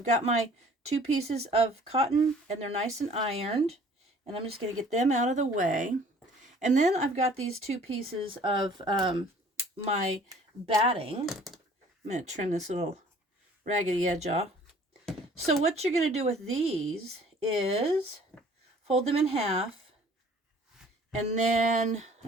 got my two pieces of cotton, and they're nice and ironed, and I'm just going to get them out of the way. And then I've got these two pieces of my batting. I'm going to trim this little raggedy edge off. So what you're going to do with these is fold them in half. And then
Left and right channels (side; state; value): both; normal; correlation 0.53